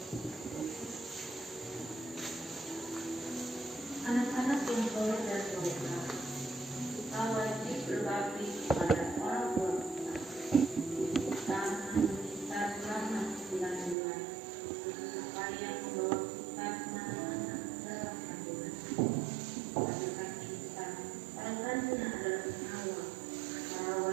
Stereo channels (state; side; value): drops out; left; at 14.0 s